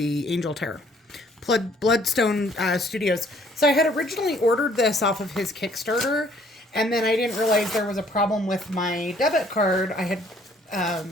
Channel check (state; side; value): normal; both; correlation 0.61